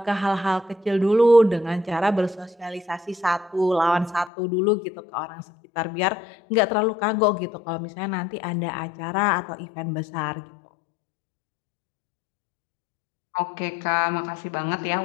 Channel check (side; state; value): right; drops out; at 4.3 s